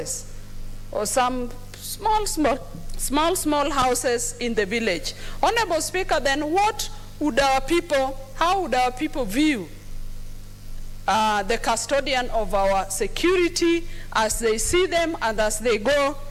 or some small houses in the village. Honorable Speaker, then what would our people, how would our people view the custodian of our security as they see them and as they go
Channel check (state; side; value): identical; both; correlation 1.00